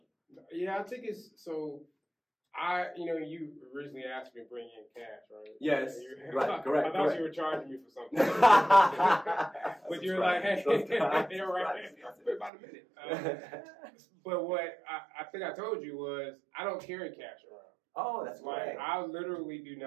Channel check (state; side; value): drops out; left; at 12.5 s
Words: Yeah, I think it's so. You originally asked me to bring in cash, right? Yes, right, correct. I thought you were charging me for something. But you're like, hey, you're right. About a minute. But what I think I told you was, I don't carry cash around. Oh, that's right. I literally do